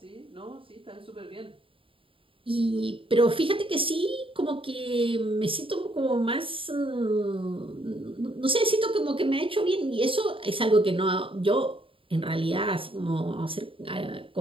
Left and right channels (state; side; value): late; left; 0.26 ms